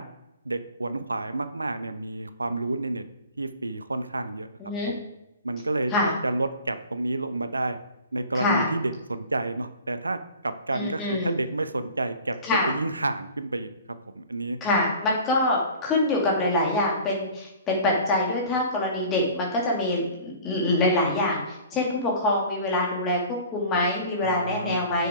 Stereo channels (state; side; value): inverted; both; correlation -0.43